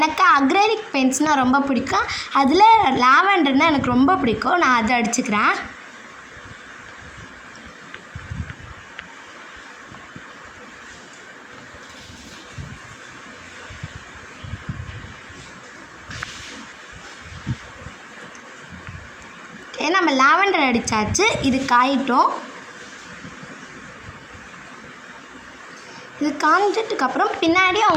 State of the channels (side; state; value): both; identical; correlation 1.00